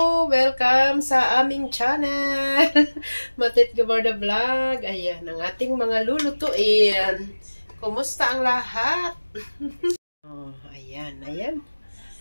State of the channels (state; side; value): inverted; both; correlation -1.00